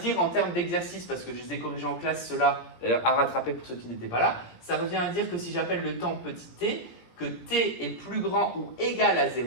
en termes d'exercice, parce que je les ai corrigés en classe ceux-là, d'ailleurs à rattraper pour ceux qui n'étaient pas là. Ça revient à dire que si j'appelle le temps petit t, que t est plus grand ou égal à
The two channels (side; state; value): right; late; 17 ms